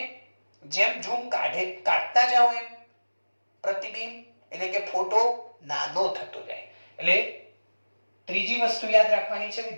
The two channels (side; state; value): both; inverted; correlation -1.00